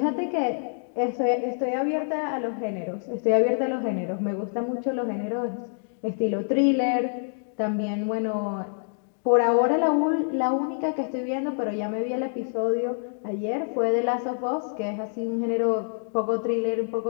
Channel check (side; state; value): right; silent; digital silence